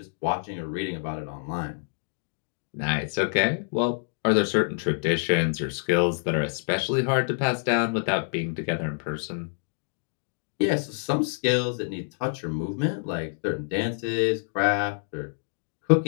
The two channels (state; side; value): silent; right; digital silence